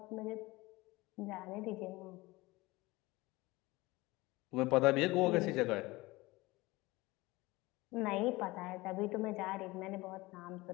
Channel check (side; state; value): right; quieter; 21.2 dB